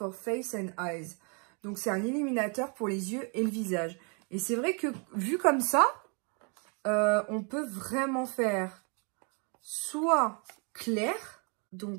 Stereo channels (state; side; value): quieter; left; 35.6 dB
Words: Face and Eyes. Donc, c'est un illuminateur pour les yeux et le visage. Et c'est vrai que, vu comme ça, on peut vraiment faire soit clair.